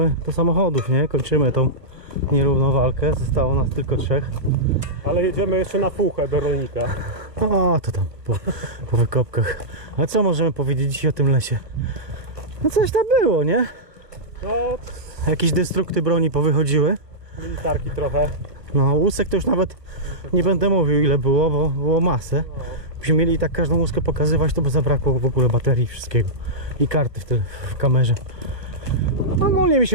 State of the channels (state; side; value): late; left; 1.3 ms